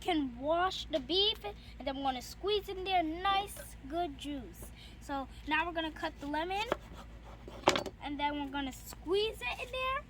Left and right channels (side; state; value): both; identical; correlation 1.00